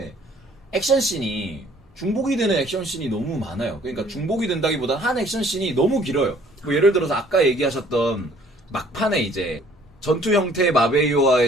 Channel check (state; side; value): normal; both; correlation 0.58